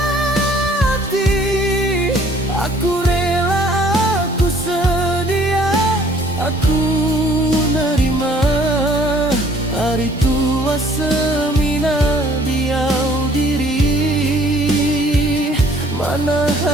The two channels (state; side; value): normal; both; correlation 0.57